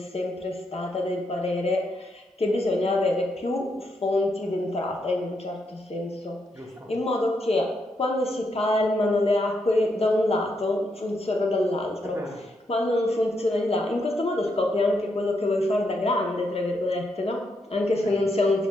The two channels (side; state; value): both; normal; correlation 0.80